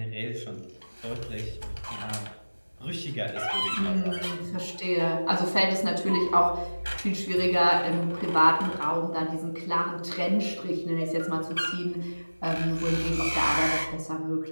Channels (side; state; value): both; inverted; correlation -1.00